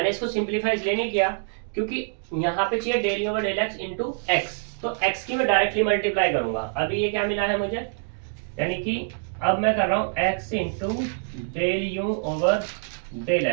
इसको सिंप्लीफाई इसलिए नहीं किया क्योंकि यहाँ पे चाहिए del over del x into x, तो x की मैं डायरेक्टली मल्टीप्लाई करूंगा। अभी ये क्या मिला है मुझे, यानी कि अब मैं कर रहा हूँ x into del you over del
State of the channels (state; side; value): silent; left; digital silence